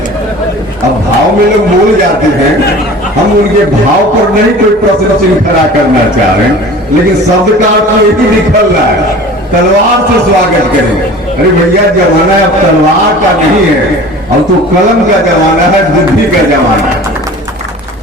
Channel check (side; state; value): both; normal; correlation 0.41